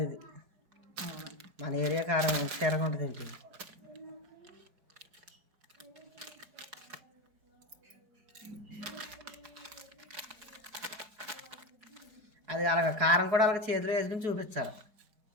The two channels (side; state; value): left; late; 4.8 ms